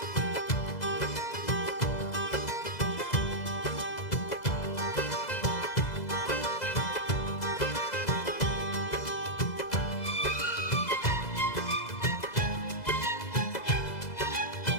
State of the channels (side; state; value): right; late; 2.0 ms